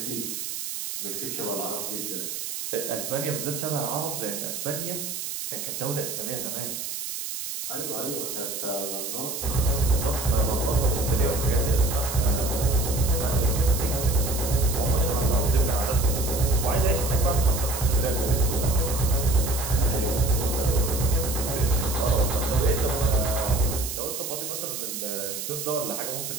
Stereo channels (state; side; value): noise; right; hiss, 5 dB below the sound